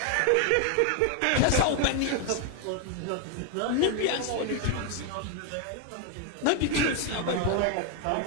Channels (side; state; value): both; different; correlation 0.00